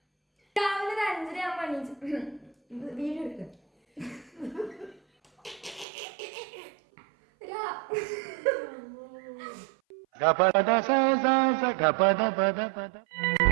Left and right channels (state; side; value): drops out; left; at 5.9 s